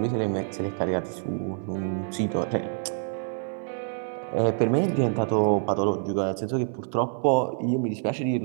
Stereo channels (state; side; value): silent; left; 57 dB below the other